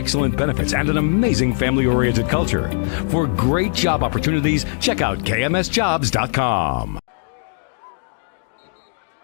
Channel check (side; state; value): right; silent; digital silence